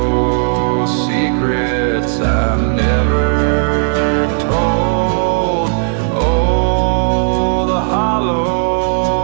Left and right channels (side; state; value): left; silent; digital silence